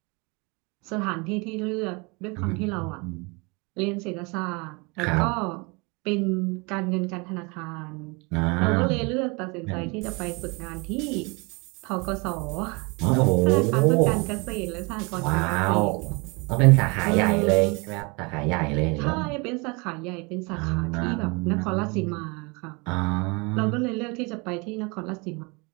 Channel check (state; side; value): quieter; left; 28.9 dB